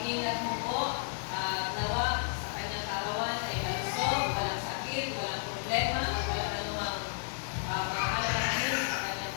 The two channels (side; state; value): right; silent; digital silence